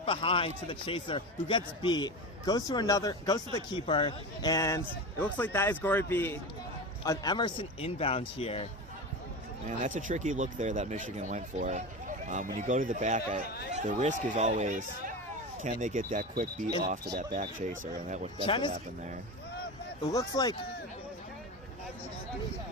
behind to the chaser, who gets beat, goes to the keeper, and it looks like that is going to be an Emerson inbound here. Man, that's a tricky look there that Michigan went for. When you go to the back, the risk is always, can they get that quick beat off to that back chaser, and that's what happened there. It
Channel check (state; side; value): normal; both; correlation 0.25